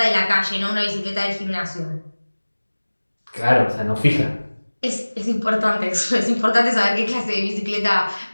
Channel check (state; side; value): inverted; both; correlation -1.00